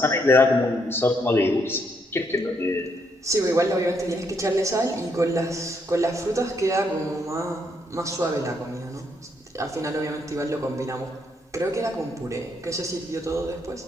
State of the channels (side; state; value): both; normal; correlation 0.74